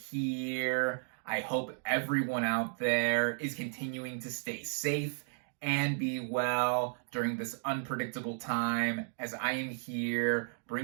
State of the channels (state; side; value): silent; left; digital silence